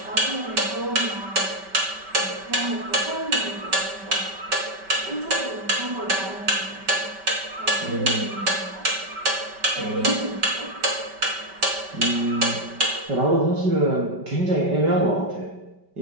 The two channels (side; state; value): left; late; 5.2 ms